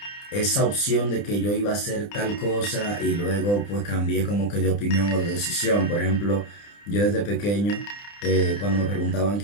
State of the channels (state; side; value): late; right; 30 ms